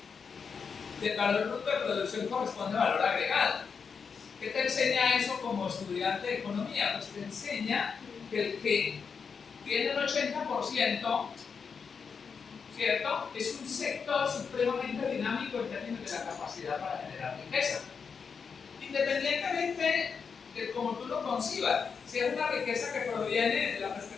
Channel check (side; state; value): right; quieter; 5.9 dB